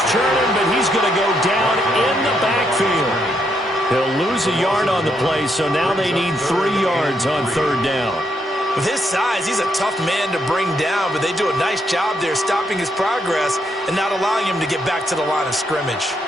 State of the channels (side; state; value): both; normal; correlation 0.76